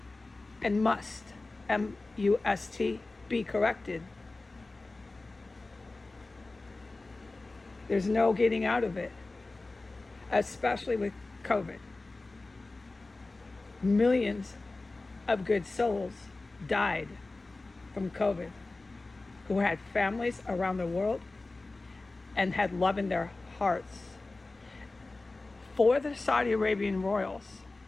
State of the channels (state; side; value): quieter; right; 3.3 dB